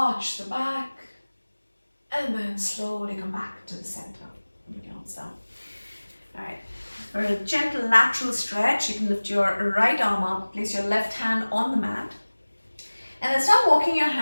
the back, and then slowly come back to the center. Bring your arms down. All right. For a gentle lateral stretch, you can lift your right arm up, place your left hand on the mat, and then start walking your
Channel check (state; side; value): inverted; both; correlation -1.00